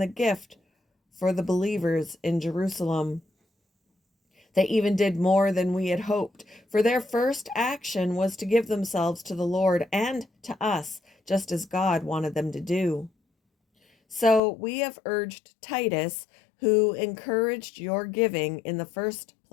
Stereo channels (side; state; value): right; drops out; at 14.4 s